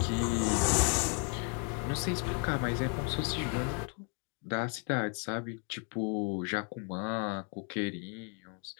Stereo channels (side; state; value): right; quieter; 39.6 dB